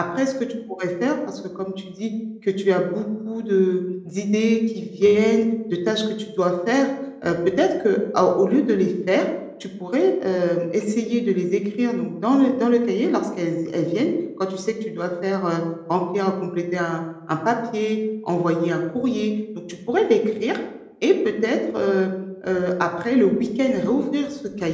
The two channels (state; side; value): identical; both; correlation 1.00